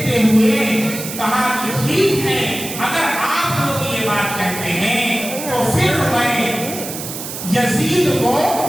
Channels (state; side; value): noise; right; hiss, 8 dB below the sound